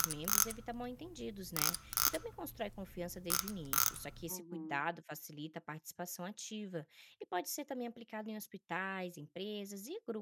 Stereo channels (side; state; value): both; identical; correlation 1.00